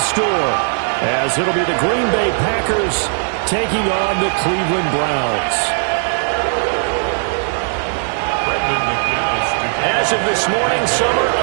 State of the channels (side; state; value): left; silent; digital silence